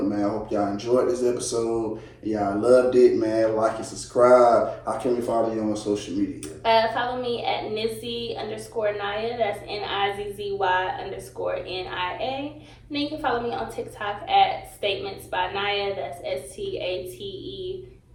man. I hope y'all enjoyed this episode. Y'all loved it, man. Like and subscribe. How can we follow you on social media? Follow me at Nizzy_Nia. That's NIZZY_NIA. And then you can follow me on TikTok at Statements by Nia. That's STATEMENTSBYNIA.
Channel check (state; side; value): identical; both; correlation 1.00